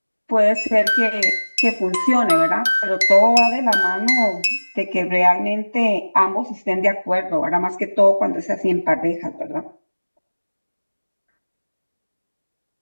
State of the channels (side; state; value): both; inverted; correlation -1.00